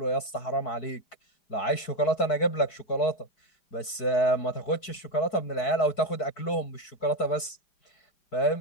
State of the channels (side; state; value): right; late; 4.6 ms